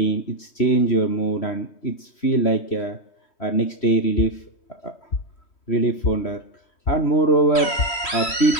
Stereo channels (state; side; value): late; right; 3.1 ms